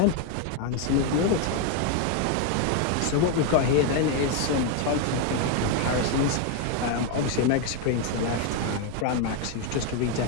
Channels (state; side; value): different; both; correlation 0.01